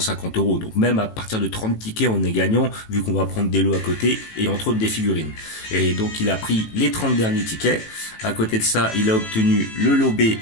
€. Donc même à partir de 30 tickets, on est gagnant, vu qu'on va prendre des lots à côté et entre autres des figurines. Et donc il a pris les 30 derniers tickets. À côté de ça, il a obtenu le lot B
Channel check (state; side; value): late; right; 18 ms